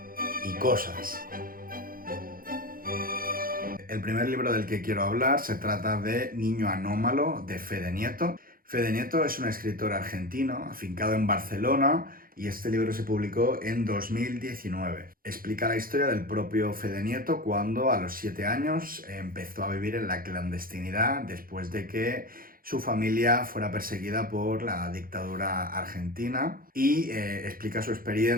y cosas. El primer libro del que quiero hablar se trata de Niño Anómalo, de Fede Nieto. Fede Nieto es un escritor argentino, afincado en Barcelona, y este libro se publicó en 2019. Explica la historia del propio Fede Nieto cuando a los 7 años empezó a vivir en la clandestinidad después de que su familia fuera perseguida por la dictadura argentina, y explica su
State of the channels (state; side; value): late; left; 0.42 ms